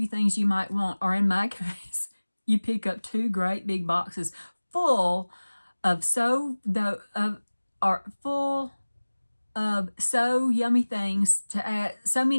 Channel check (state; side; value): inverted; both; correlation -1.00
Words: things you might want, or in my case, you pick up 2 great big boxes full of so yummy things to add, so